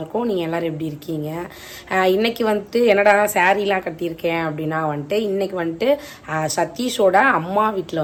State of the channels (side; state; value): both; identical; correlation 1.00